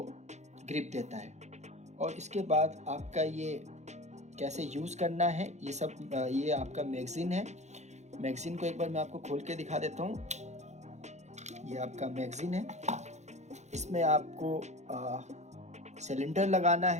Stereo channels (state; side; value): late; left; 0.33 ms